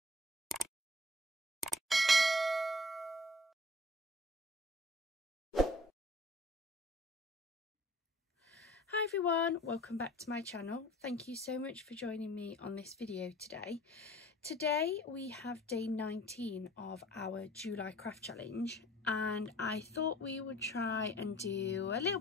Hi everyone, welcome back to my channel. Thank you so much for joining me on this video today. Today we have day 19 of our July craft challenge, and I thought we would try and do a little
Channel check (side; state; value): both; normal; correlation 0.50